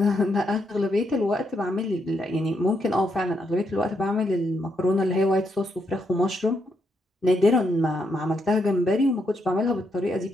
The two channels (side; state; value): both; normal; correlation 0.79